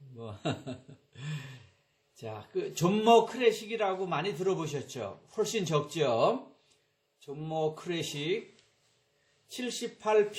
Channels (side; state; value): both; identical; correlation 1.00